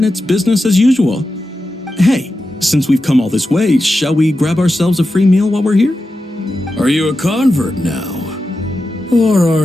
it's business as usual. Hey, since we've come all this way, shall we grab ourselves a free meal while we're here? Are you a convert now? Or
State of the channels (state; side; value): normal; both; correlation 0.91